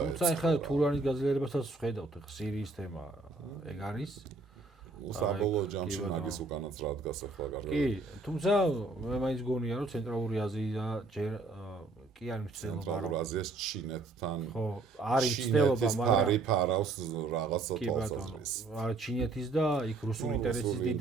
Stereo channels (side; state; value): left; quieter; 3.5 dB